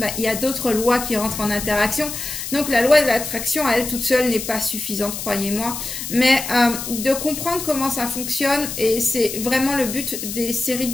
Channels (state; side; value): noise; left; hiss, 7 dB below the sound